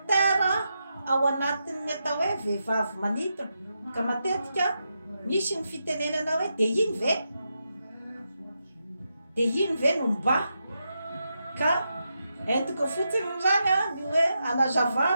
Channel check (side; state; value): both; inverted; correlation -0.85